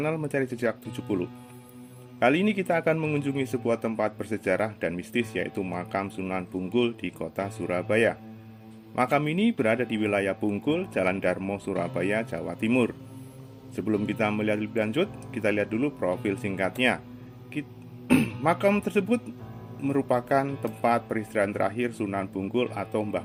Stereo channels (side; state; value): both; identical; correlation 1.00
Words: Mencari Jejak 70. Kali ini kita akan mengunjungi sebuah tempat bersejarah dan mistis, yaitu makam Sunan Bungkul di kota Surabaya. Makam ini berada di wilayah Bungkul, Jalan Darmo, Surabaya, Jawa Timur. Sebelum kita melihat lebih lanjut, kita lihat dulu profil singkatnya. Makam tersebut merupakan tempat peristirahatan terakhir Sunan Bungkul atau Mbah